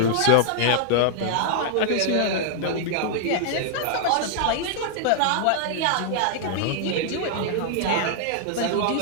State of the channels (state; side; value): different; both; correlation -0.01